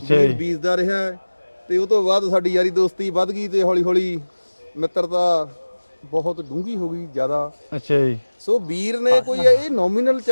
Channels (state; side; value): inverted; both; correlation -1.00